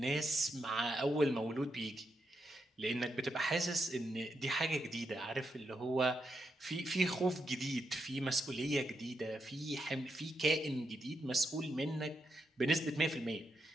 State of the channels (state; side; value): normal; both; correlation 0.83